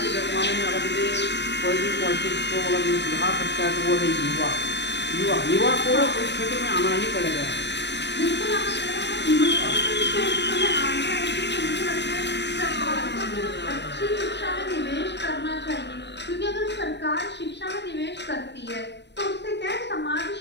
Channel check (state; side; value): late; right; 0.50 ms